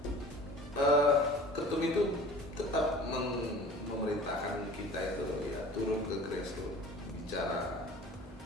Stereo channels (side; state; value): both; normal; correlation 0.43